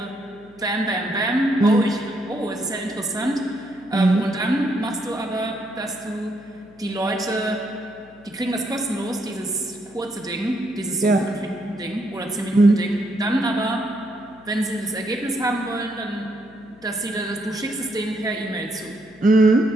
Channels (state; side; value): noise; left; hum, 25 dB below the sound